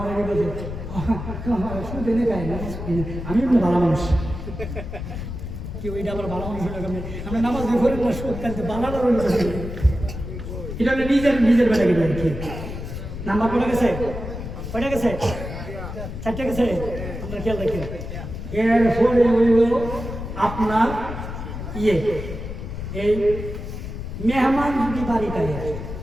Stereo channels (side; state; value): left; noise; rumble, 7 dB below the sound